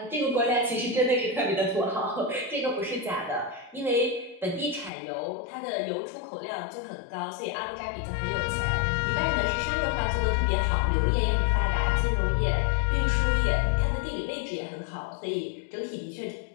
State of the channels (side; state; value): right; drops out; at 4.9 s